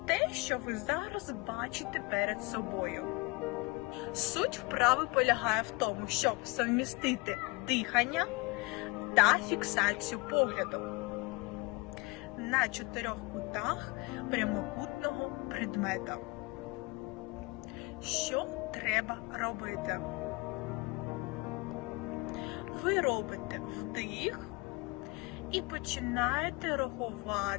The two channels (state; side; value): quieter; right; 25.7 dB